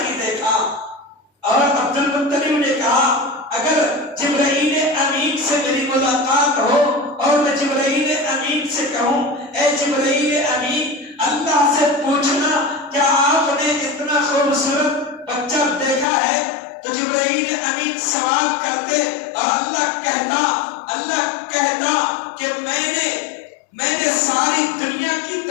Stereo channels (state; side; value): drops out; right; at 16.1 s